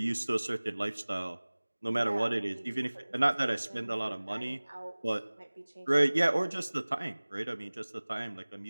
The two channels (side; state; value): both; inverted; correlation -1.00